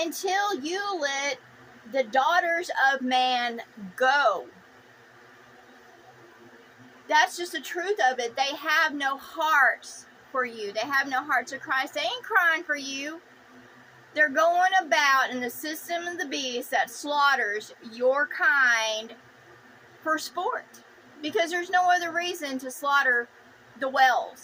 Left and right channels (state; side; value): identical; both; correlation 1.00